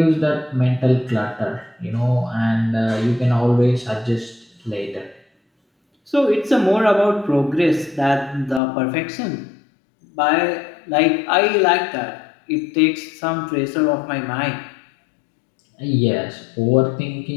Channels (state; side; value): drops out; right; at 8.6 s